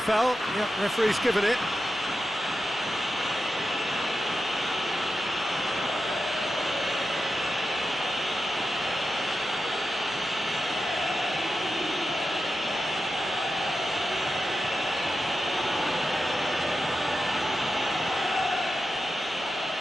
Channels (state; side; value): normal; both; correlation 0.90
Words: foul. Yep, referee's given it.